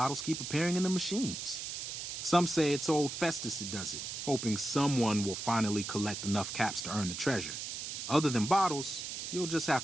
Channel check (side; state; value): right; noise; hiss, 6 dB below the sound